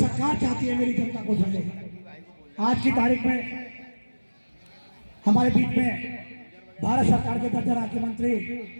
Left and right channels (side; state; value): both; inverted; correlation -1.00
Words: चाहती है मेरी जनता को समझे। आज की तारीख में हमारे बीच में भारत सरकार के दर्जा राज्य मंत्री